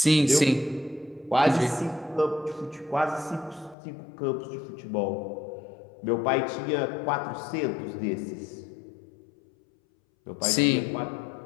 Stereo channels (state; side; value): drops out; right; at 3.8 s